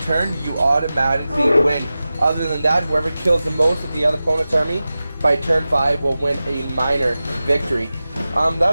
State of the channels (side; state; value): both; inverted; correlation -0.95